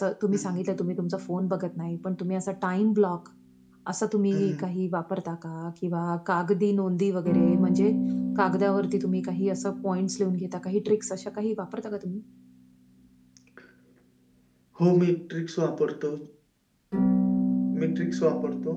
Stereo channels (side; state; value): both; identical; correlation 1.00